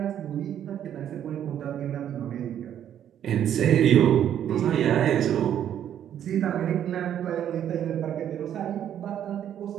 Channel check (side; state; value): left; quieter; 10.1 dB